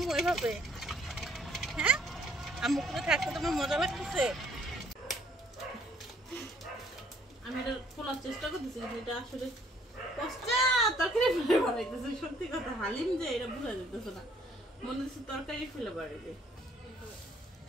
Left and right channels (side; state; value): both; normal; correlation 0.63